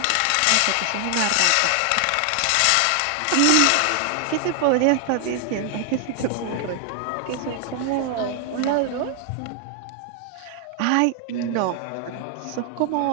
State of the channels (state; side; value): different; both; correlation 0.00